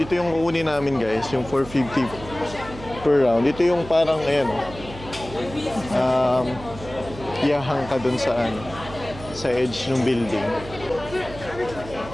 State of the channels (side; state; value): right; noise; hum, 15 dB below the sound